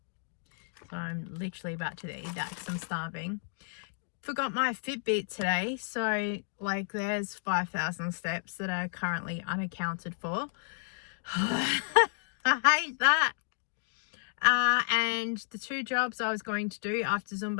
So I'm literally about to eat that because I'm starving. Forgot my Fitbit today, so like there's 5,000 steps that are currently unaccounted for. I hate that. And the 2 jobs I was going to do after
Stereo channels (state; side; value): silent; right; digital silence